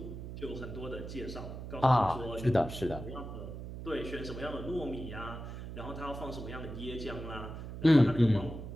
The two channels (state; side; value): noise; right; hum, 9 dB below the sound